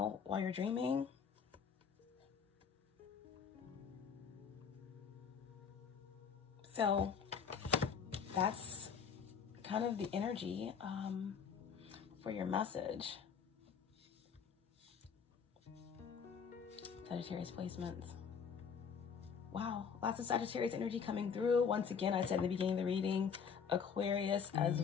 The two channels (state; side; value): quieter; right; 6.6 dB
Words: while you're dreaming. So that's kind of the energy for your message. Sagittarius placements. Wow, lots of Sagittarius energy coming through. Once again, I said in the beginning of the reading, Aquarius as